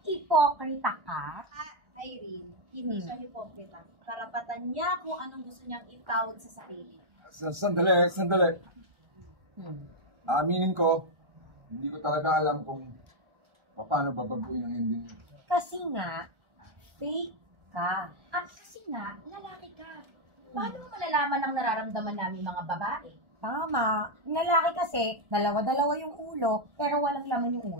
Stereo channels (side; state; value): left; late; 1.4 ms